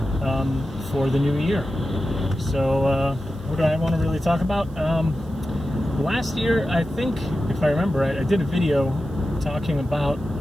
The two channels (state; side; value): noise; right; hiss, 30 dB below the sound